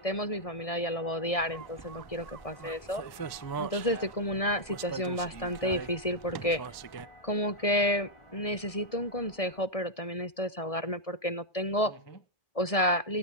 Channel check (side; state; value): right; late; 1.6 ms